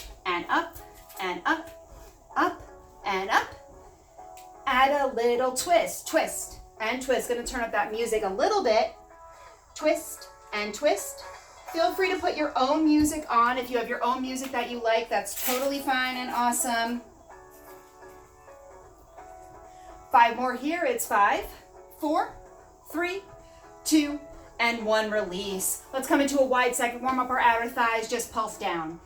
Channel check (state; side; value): identical; both; correlation 1.00